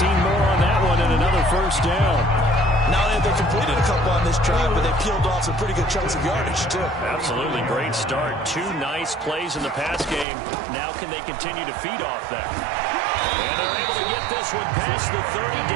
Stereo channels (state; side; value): drops out; left; at 10.2 s